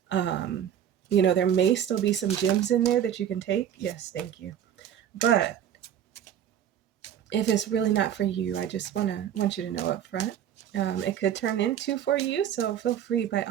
There may still be some gems in there that you can take. Yes, thank you. But if it's really not for you, I just want you to know up front. It could turn into for you, so feel free, by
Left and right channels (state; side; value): quieter; left; 9.8 dB